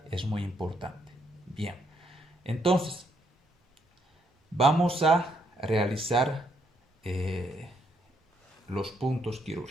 es muy importante. Bien, entonces vamos a realizar los puntos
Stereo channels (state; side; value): normal; both; correlation 0.73